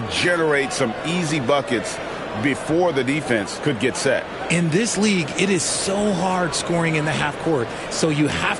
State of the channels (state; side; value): identical; both; correlation 1.00